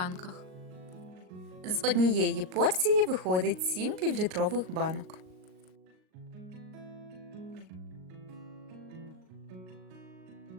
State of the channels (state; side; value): late; left; 38 ms